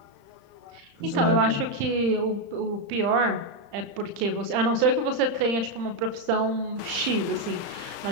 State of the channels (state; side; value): late; left; 35 ms